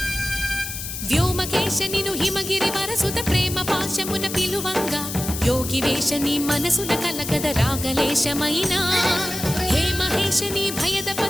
వ్యోమకేశనిను హిమగిరి వరసుత ప్రేమ పాశమున పిలువంగా యోగి వేషని మనసున కలకద రాగలేశమైనా హే మహేశని భయద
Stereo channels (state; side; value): noise; left; hiss, 7 dB below the sound